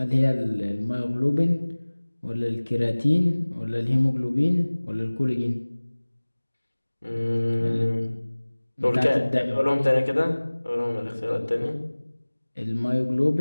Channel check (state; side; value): inverted; both; correlation -1.00